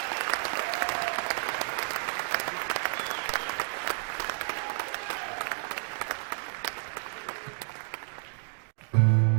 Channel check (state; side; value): silent; left; digital silence